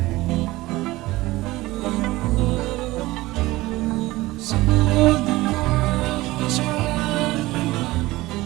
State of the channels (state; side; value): quieter; left; 18.9 dB